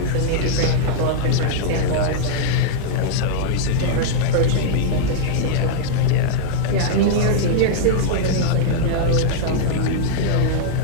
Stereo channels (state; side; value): different; both; correlation -0.01